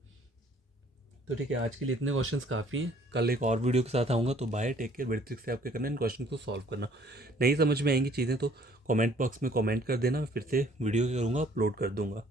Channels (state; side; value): normal; both; correlation 0.59